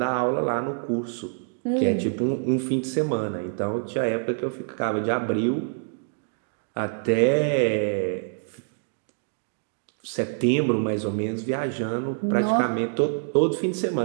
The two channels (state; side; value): silent; left; digital silence